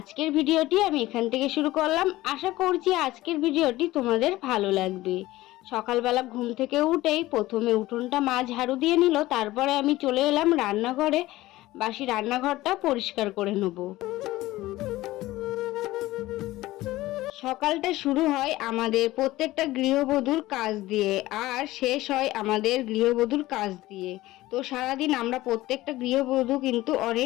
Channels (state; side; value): quieter; right; 17.3 dB